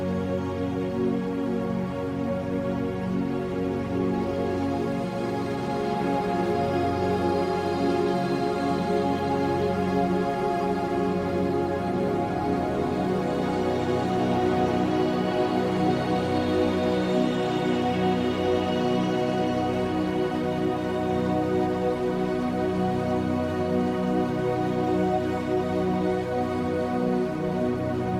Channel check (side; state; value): both; identical; correlation 1.00